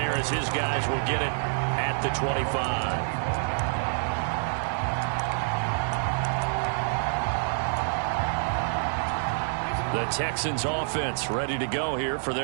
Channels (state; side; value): silent; left; digital silence